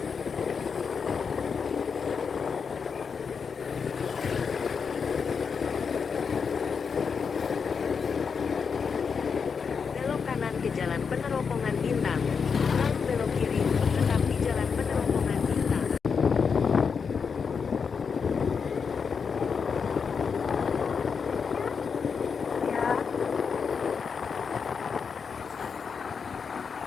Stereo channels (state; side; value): quieter; right; 5.9 dB